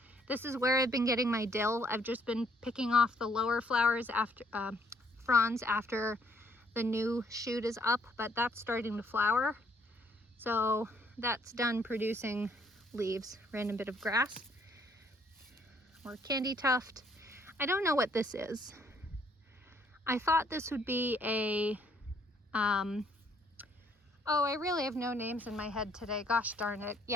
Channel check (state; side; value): normal; both; correlation 0.66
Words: This is where I've been getting my dill. I've just been picking off the lower flowers after, fronds after the new shoot is up, but that's starting to flower. So that's done producing leaves. Random bit of grass. Or candy tuft. I don't know what this is. I thought this would be a, oh, I really have no names in my head today. Gosh darn it.